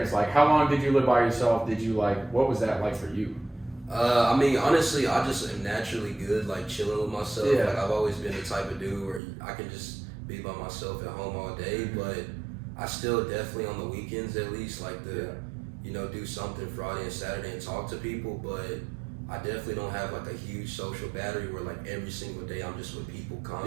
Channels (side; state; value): left; drops out; at 9.2 s